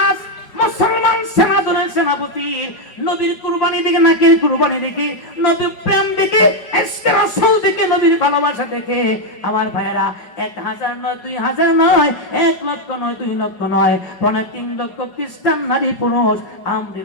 মুসলমান সেনাদলের সেনাপতি, নবীর কুরবানি দেখে, নাকের কুরবানি দেখে, নবীর প্রেম দেখে, ইশকে রাসূল দেখে, নবীর ভালোবাসা দেখে আমার ভাইয়েরা 1000 নয়, 2000 নয়, 1 লক্ষ নয়, 2 লক্ষ নয়, 3 লক্ষ খ্রিস্টান নারী পুরুষ আমর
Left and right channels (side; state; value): right; late; 5.3 ms